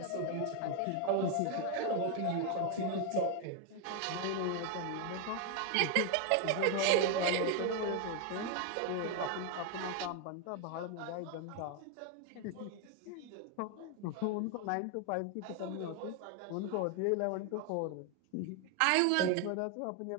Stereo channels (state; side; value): different; both; correlation 0.01